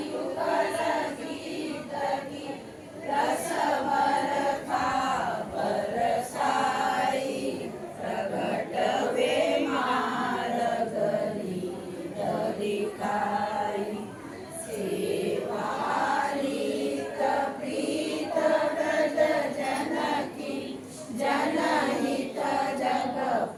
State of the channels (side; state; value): both; identical; correlation 1.00